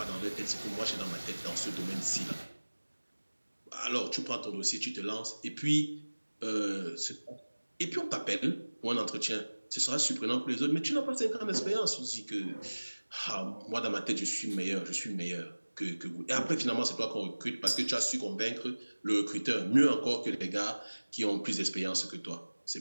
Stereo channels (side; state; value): both; inverted; correlation -1.00